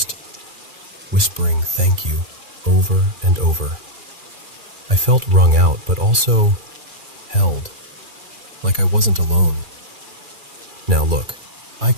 whispering thank you over and over. I felt wrung out, but also held, like I wasn't alone. Now look, I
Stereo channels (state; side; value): late; left; 2.4 ms